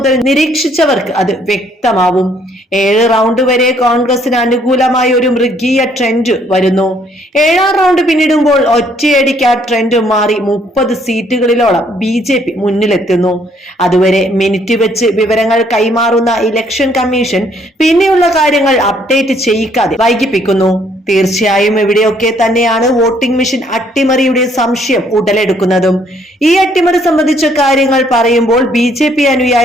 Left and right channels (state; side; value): normal; both; correlation 0.66